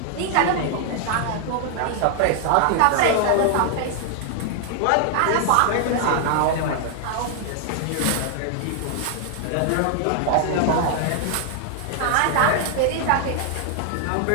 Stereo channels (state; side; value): different; both; correlation 0.00